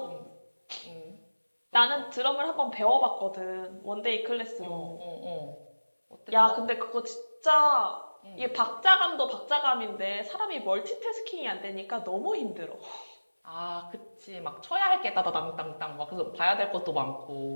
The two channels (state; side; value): inverted; both; correlation -1.00